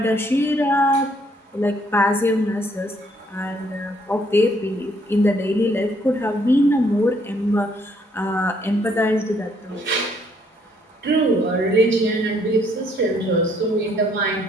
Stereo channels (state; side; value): normal; both; correlation 0.68